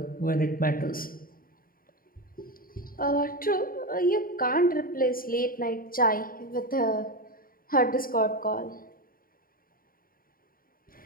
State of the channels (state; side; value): late; right; 0.42 ms